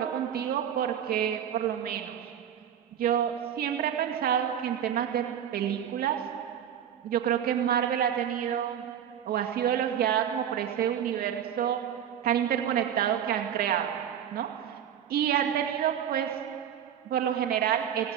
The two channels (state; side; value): quieter; left; 9.4 dB